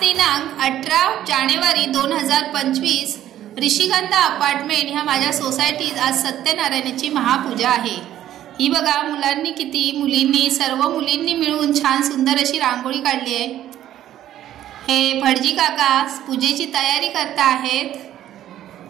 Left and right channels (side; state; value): left; quieter; 12.2 dB